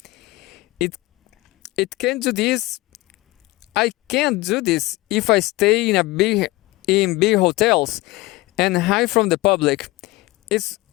It it can do this. I can't do this if I stay in big hotels and hide from the public. It's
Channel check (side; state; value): right; quieter; 20.4 dB